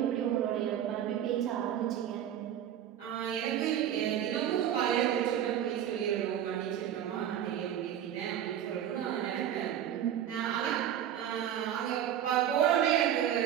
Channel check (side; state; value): left; quieter; 10.4 dB